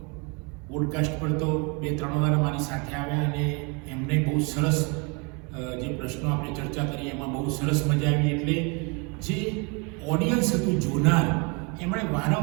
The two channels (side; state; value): left; quieter; 32.0 dB